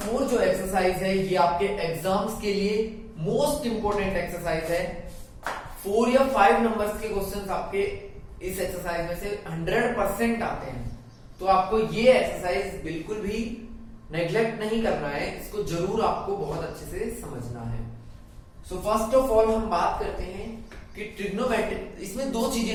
जो एक्सरसाइज है ये आपके एग्जाम्स के लिए मोस्ट इंपोर्टेंट एक्सरसाइज है। 4 या 5 नंबर्स के क्वेश्चंस आपके इस एक्सरसाइज में से 100% आते हैं, तो आपको ये एक्सरसाइज बिल्कुल भी नेग्लेक्ट नहीं करना है, इसको जरूर आपको बहुत अच्छे से समझना है। सो फर्स्ट ऑफ ऑल हम बात करते हैं कि ट्रिग्नोमेट्रिक, इसमें दो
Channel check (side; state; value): both; identical; correlation 1.00